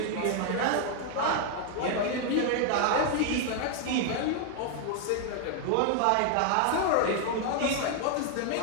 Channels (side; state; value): both; different; correlation 0.00